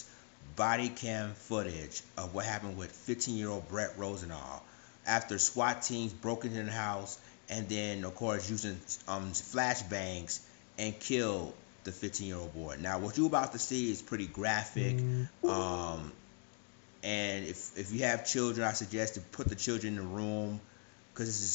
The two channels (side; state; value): right; quieter; 39.1 dB